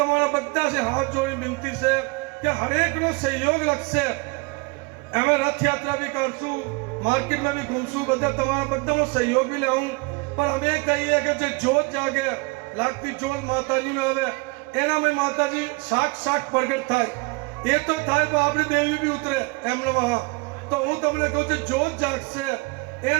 બધા से हाथ जोड़ी विनती છે કે હરેક નો સહયોગ લાગશે અમે રથ યાત્રા भी કરશું मार्केट में भी घूमसू बदा तमारा बदा नो सहयोग भी लेऊं पर हमें कहिए कि जो जोत जागे लागती जोत माताजी नो आवे एना में माताजी साक्षात प्रगट थाय ए तो थाय पर आपणी देवी भी उतरे एम नमः तो हूँ तमने कहूं छे जोत जागशे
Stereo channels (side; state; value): left; quieter; 27.7 dB